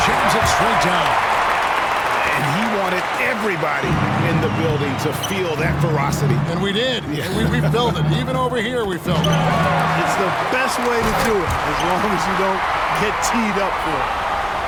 jams it straight down. And he wanted everybody in the building to feel that ferocity. And we did. Yeah. And we felt it. Even over here, we felt it. It's the best way to do it, as long as you don't get teed up for it.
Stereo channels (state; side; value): identical; both; correlation 1.00